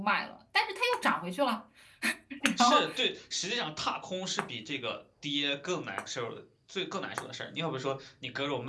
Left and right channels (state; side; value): identical; both; correlation 1.00